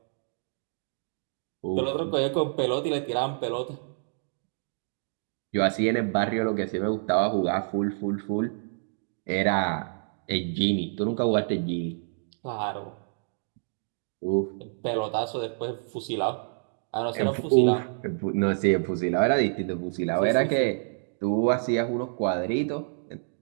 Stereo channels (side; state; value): left; silent; digital silence